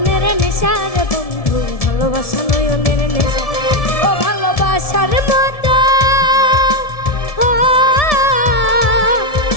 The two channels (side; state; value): right; late; 1.7 ms